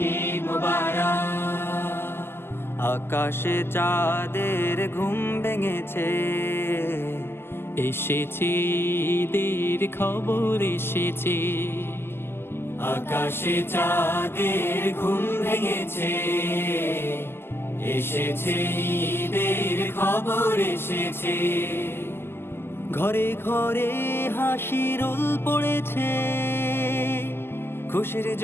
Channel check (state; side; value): late; right; 0.12 ms